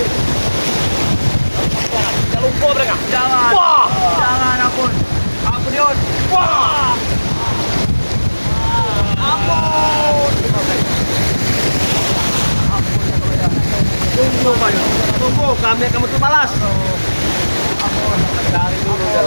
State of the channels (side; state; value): both; inverted; correlation -1.00